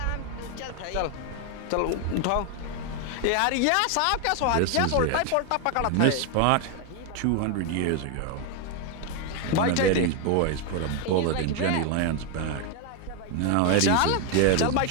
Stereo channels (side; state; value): both; different; correlation 0.01